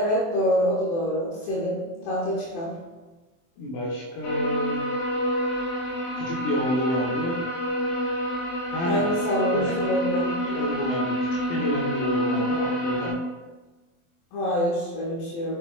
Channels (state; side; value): late; right; 24 ms